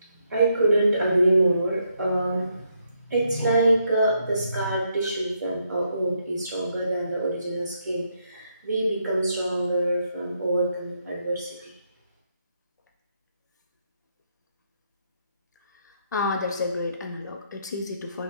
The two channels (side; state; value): both; inverted; correlation -0.77